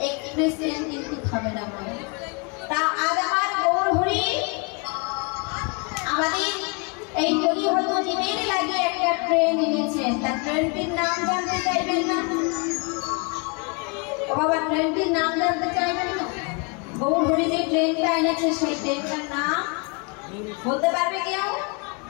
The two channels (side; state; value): right; quieter; 33.2 dB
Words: এক্সপ্রেস ট্রেন কিন্তু থামে না। তা আজ আমার গৌর হরি আমাদের এই কলি হয়তো জীবের লাগে একটা ট্রেন এনেছেন। তা ট্রেনটির নাম জানতে চাইবেন না? ও বাবা, ট্রেনটির নাম জানতে চাইবেন না? গৌর হরি যে ট্রেনটা এনেছে সেই ট্রেনটার নাম বলতে পারবে কেউ?